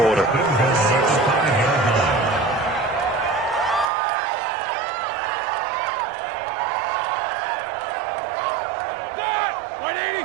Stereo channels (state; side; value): drops out; left; at 3.9 s